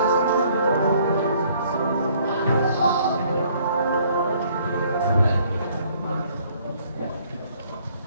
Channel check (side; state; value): both; inverted; correlation -0.61